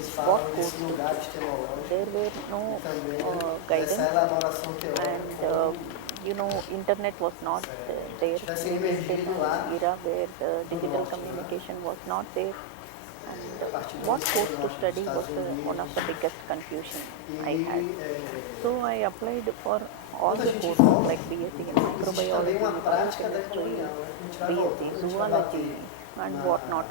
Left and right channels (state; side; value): different; both; correlation -0.01